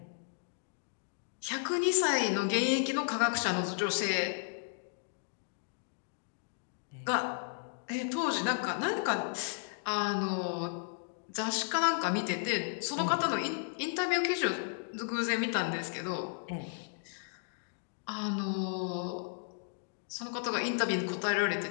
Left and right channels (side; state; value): right; silent; digital silence